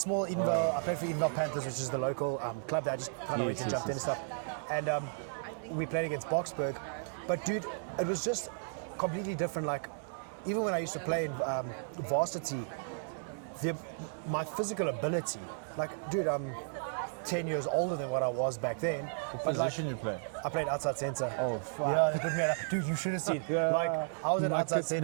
Edenvale. I played for Edenvale Panthers, which is the local club that I just kind of went and jumped in and stuff. And we played against Boxburg, but dude, it was just completely different. Like, even when I used to play in varsity, my physical ability, like, dude, I'm 10 years older than what I was back then. What position you play? I played outside centre. Oh, fuck. Yeah, they put me at, dude, you should have seen. Like, I was at outside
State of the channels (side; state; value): left; silent; digital silence